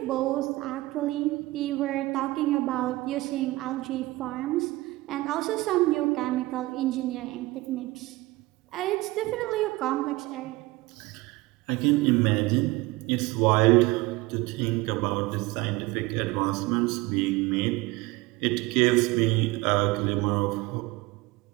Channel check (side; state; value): left; quieter; 20.4 dB